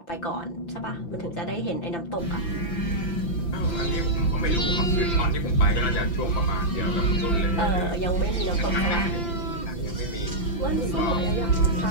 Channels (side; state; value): right; late; 5.9 ms